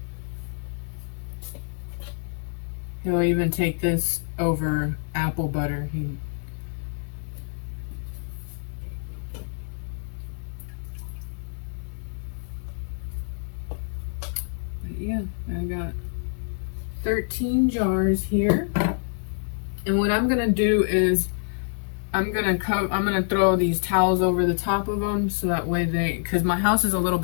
He'll even take this over apple butter. But yeah, I got 13 jars here. And what I'm gonna do is I'm gonna throw these towels over the top of them, so that way because my house is a little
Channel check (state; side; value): silent; right; digital silence